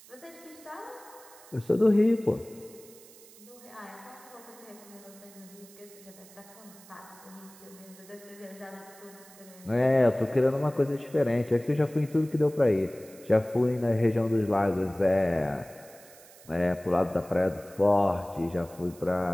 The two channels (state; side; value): noise; right; hiss, 22 dB below the sound